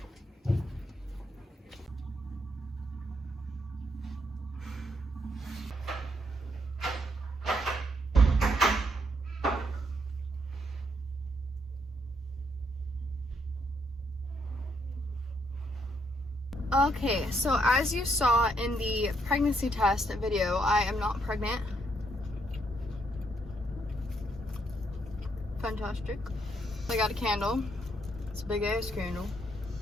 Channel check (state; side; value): normal; both; correlation 0.74